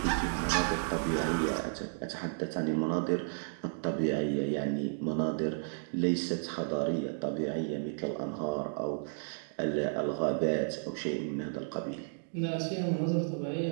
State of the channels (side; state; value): left; silent; digital silence